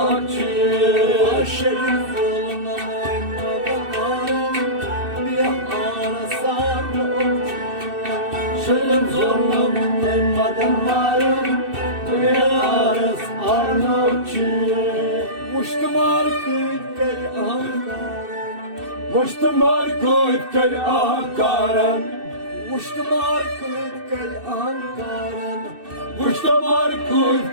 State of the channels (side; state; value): left; late; 2.6 ms